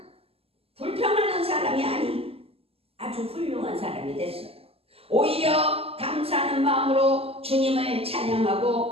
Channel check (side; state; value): left; late; 0.28 ms